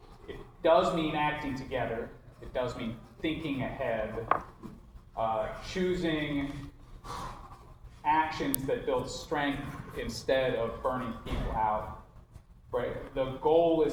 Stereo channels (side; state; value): both; identical; correlation 1.00